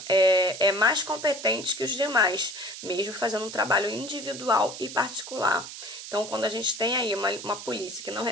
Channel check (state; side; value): noise; right; hiss, 11 dB below the sound